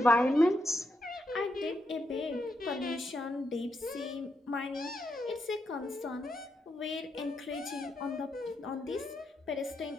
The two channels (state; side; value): normal; both; correlation 0.82